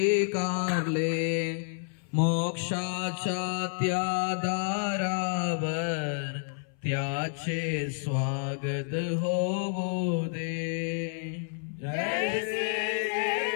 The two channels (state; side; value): silent; right; 57 dB below the other